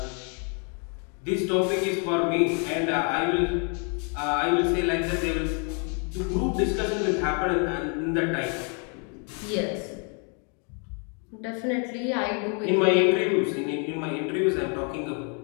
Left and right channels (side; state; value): right; quieter; 39.0 dB